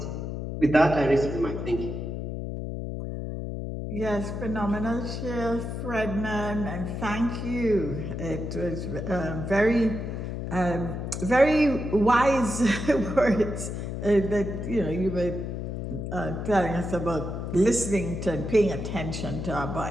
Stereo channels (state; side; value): noise; left; hum, 5 dB below the sound